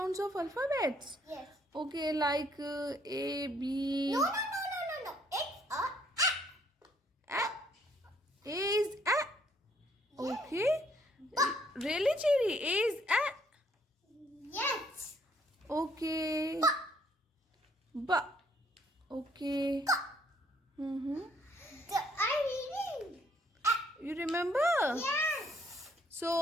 of alphabets. Yes. Okay, like A, B. No. It's a A. A is A. Yes. Okay. Really, Chiri? A is A. Yes. Okay. B. Okay. Mm-hmm. I'm reading. You remember? Yes.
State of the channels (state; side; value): normal; both; correlation 0.66